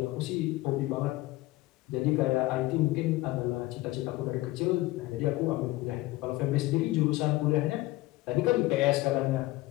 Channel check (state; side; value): quieter; right; 18.6 dB